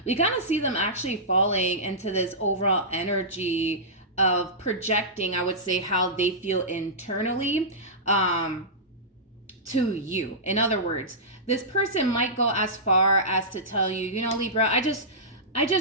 We kind of see them actually falling into this overall energy of projecting, I would say, how they feel internally to you. In other words, this person might go as far as to tell you, you know, Libra, I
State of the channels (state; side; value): normal; both; correlation -0.16